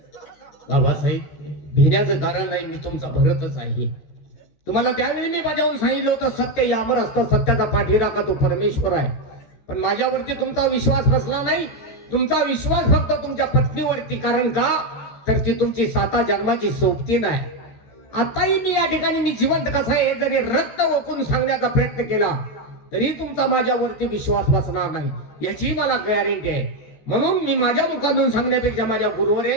बाबासाहेब, भिण्याचं कारण नाही, मी तुमचा भरतच आहे. तुम्हाला त्यावेळी मी बजावून सांगितलं होतं, सत्य यावर असतं, सत्याचा पाठीराखा तो परमेश्वर आहे. पण माझ्यावरती तुमचा विश्वास बसला नाही. तुमचा विश्वास फक्त तुमच्या पत्नीवरती. कारण का, तर ती तुमची 7 जन्माची सोबती नाही. आताही मी या ठिकाणी मी जिवंत कसा आहे जरी रक्त ओकून सांगण्याचा प्रयत्न केला तरी तुमचा माझ्यावरती विश्वास बसणार नाही, याची मला गॅरंटी आहे. म्हणून मी माझ्या मुखातून सांगण्यापेक्षा माझ्या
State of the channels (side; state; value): right; late; 14 ms